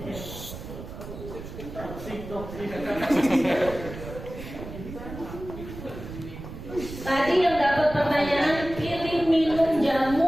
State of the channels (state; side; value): noise; right; rumble, 11 dB below the sound